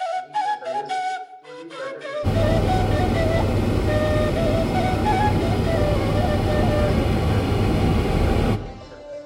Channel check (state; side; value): identical; both; correlation 1.00